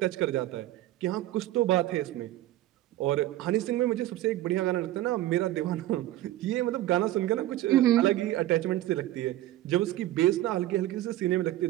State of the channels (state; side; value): quieter; left; 15.0 dB